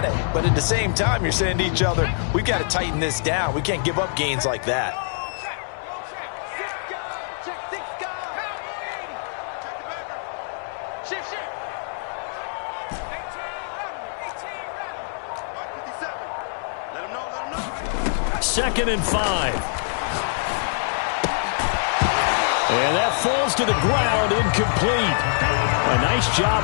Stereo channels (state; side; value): silent; right; 62 dB below the other